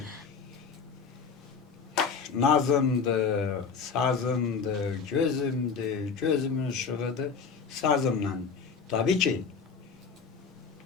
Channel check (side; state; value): right; quieter; 5.7 dB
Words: nazımdır, sazımdır, gözümdür, gözümün ışığıdır, sazımla. Tabii ki,